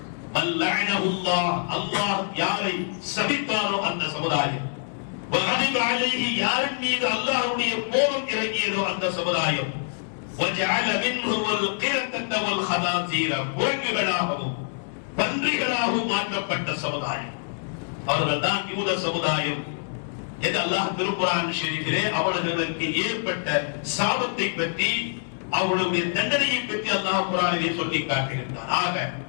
அல்லாஹ், அல்லாஹ் யாரை சபித்தாரோ அந்த சமுதாயம், வகதிப அலைஹி யாரின் மீது அல்லாஹ்வுடைய கோபம் இறங்கியதோ அந்த சமுதாயம், வஜஅல மின்ஹுல் கிரதத வல் ஹதாசீர குரங்குகளாகவும் பன்றிகளாகவும் மாற்றப்பட்ட சமுதாயம். அவர்கள் தான் யூத சமுதாயம் என்று அல்லாஹ் திருக்குர்ஆன் ஷரீஃபிலே அவர்களுக்கு ஏற்பட்ட சாபத்தை பற்றி, அவர்களுடைய தண்டனையை பற்றி அல்லாஹ் குர்ஆனிலே சொல்லி காட்டுகின்றார். ஆக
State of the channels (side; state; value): right; silent; digital silence